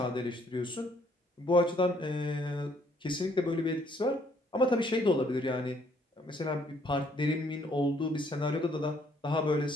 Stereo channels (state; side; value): normal; both; correlation 0.66